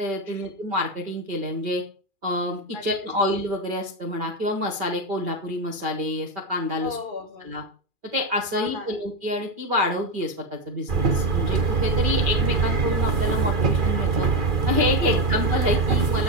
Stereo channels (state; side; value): late; left; 2.4 ms